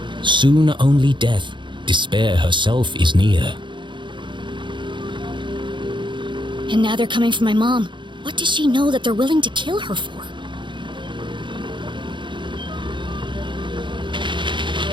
Soon only death, despair herself is near. And now they're coming for my mom. What does she know that they're willing to kill her for?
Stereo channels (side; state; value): left; late; 0.23 ms